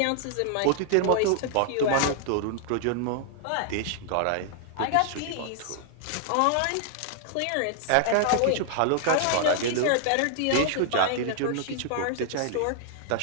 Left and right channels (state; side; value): different; both; correlation -0.01